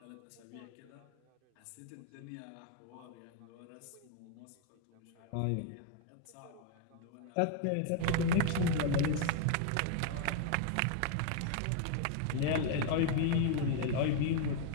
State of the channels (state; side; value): different; both; correlation 0.00